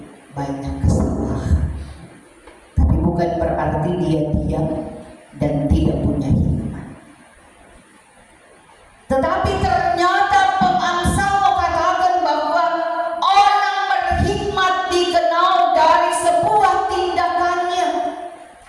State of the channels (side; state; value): both; identical; correlation 1.00